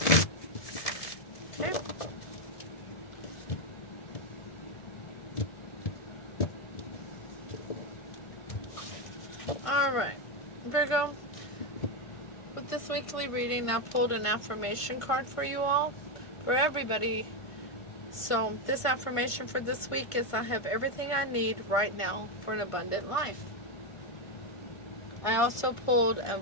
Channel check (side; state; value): right; late; 1.5 ms